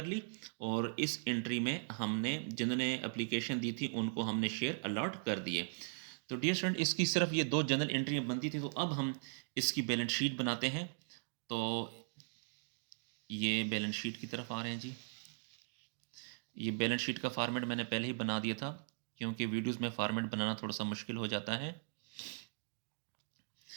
ली, और इस एंट्री में हमने जिन्होंने एप्लीकेशन दी थी उनको हमने शेयर अलॉट कर दिए। तो डियर स्टूडेंट, इसकी सिर्फ ये 2 जनरल एंट्रियाँ बनती थी। तो अब हम इसकी बैलेंस शीट बनाते हैं। तो ये बैलेंस शीट की तरफ आ रहे हैं जी। ये बैलेंस शीट का फॉर्मेट मैंने पहले ही बना दिया था, क्योंकि वीडियोज़ में फॉर्मेट बनाना थोड़ा सा मुश्किल हो जाता है।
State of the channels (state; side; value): silent; left; digital silence